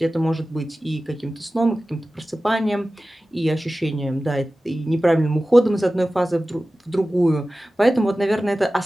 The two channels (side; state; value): both; normal; correlation 0.96